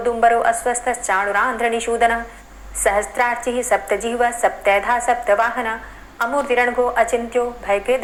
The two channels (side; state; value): both; identical; correlation 1.00